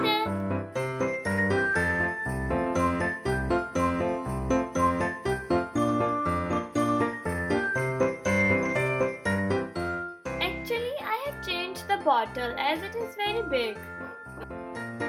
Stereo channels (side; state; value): both; identical; correlation 1.00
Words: Actually I have changed the bottle as it is very big.